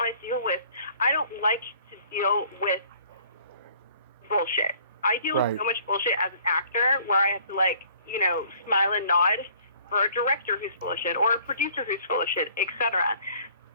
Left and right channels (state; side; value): inverted; both; correlation -0.56